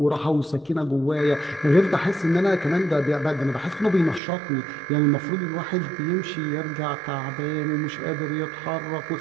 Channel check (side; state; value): left; drops out; at 4.2 s